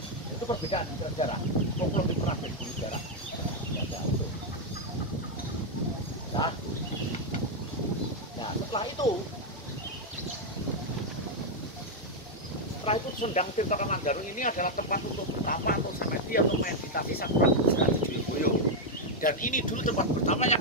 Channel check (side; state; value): both; normal; correlation 0.00